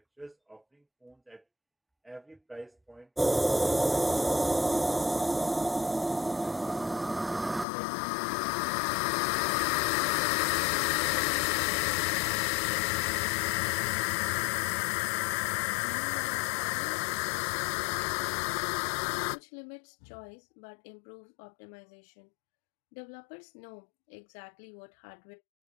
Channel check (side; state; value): right; drops out; at 7.7 s